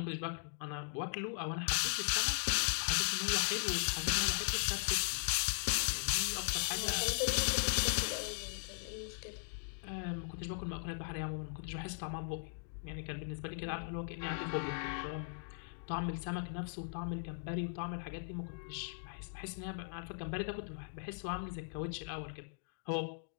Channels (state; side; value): silent; right; digital silence